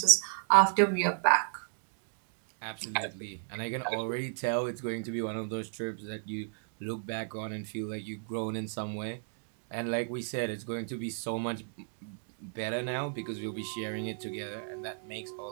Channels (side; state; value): left; silent; digital silence